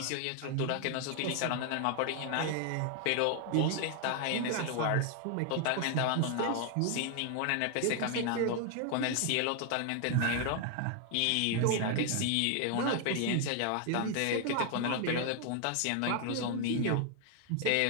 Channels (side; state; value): both; different; correlation 0.00